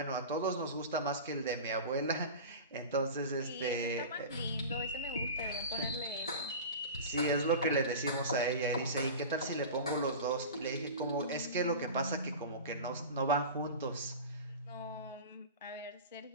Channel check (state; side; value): inverted; both; correlation -0.32